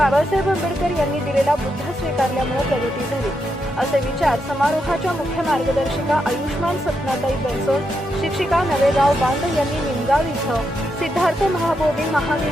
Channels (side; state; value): both; normal; correlation 0.83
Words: आंबेडकर यांनी दिलेला बुद्ध स्वीकारल्यामुळे प्रगती झाली, असे विचार समारोहाच्या मुख्य मार्गदर्शिका आयुष्मान सपनाताई बनसोड, शिक्षिका नवेगाव बांध यांनी निमगाव इथं सिद्धार्थ महाबोधी